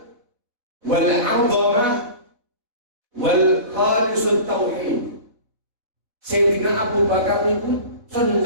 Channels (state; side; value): late; left; 4.2 ms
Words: wal 'azamah wal khalisut tauhid. Sayyidina Abu Bakar itu